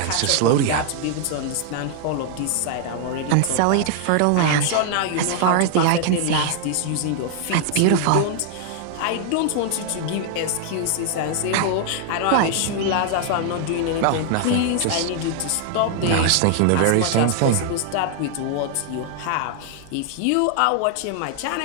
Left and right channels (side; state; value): both; different; correlation 0.00